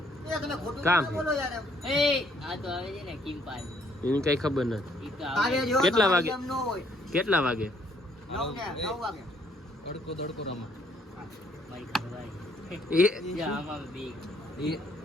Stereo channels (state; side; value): normal; both; correlation 0.66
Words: એ તમે ખોટું કામ ના બોલો યાર એમ. એ આ તો આવે છે ને કિમ્પાલ. એની કઈ ખબર નથી. ઈ તો કાલે આવે. જો કેટલા તમારી વાગે? એમ ન હોય. કેટલા વાગે? 9 વાગે. તડકો તડકો રમા. મારી ઘરવાળી. એ જ્યાં આમાં બી. એ